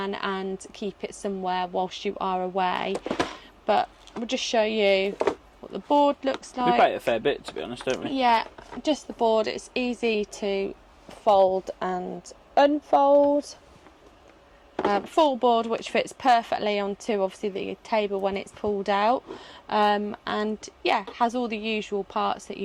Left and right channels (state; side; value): identical; both; correlation 1.00